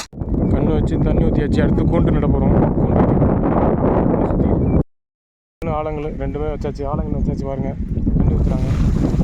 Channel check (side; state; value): both; identical; correlation 1.00